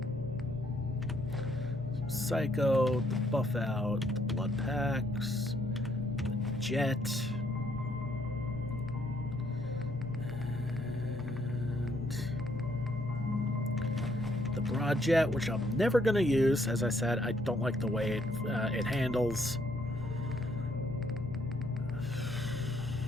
Psycho, the buff out, the blood packs, the jet. And the broad jet, which I'm never going to use. As I said, I don't like the way it handles.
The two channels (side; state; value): both; normal; correlation 0.69